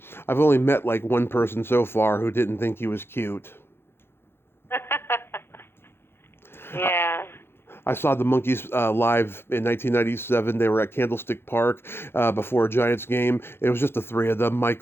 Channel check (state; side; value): late; right; 0.11 ms